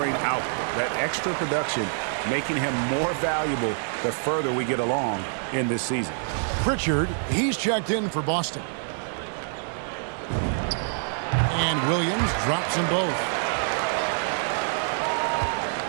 output. That extra production making him more valuable the further we get along in this season. Pritchard, he's checked in for Boston. And Williams drops them both.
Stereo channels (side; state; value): left; silent; 61 dB below the other